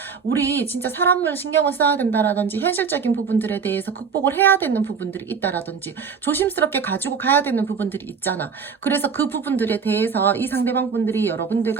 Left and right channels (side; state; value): left; quieter; 6.0 dB